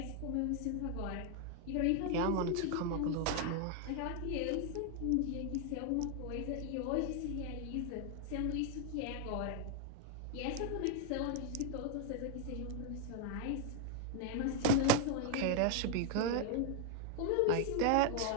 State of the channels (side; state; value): both; different; correlation 0.00